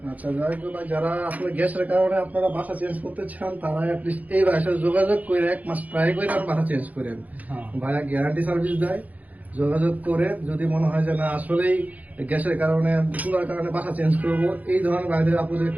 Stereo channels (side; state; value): left; late; 0.077 ms